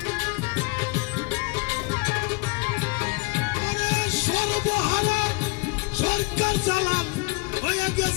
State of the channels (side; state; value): right; quieter; 27.1 dB